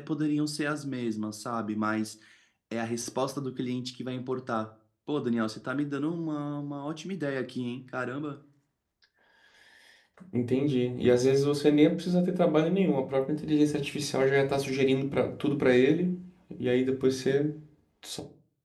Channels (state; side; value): identical; both; correlation 1.00